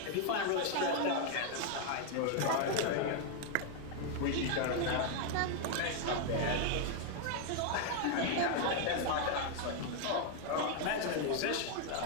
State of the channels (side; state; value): both; different; correlation 0.00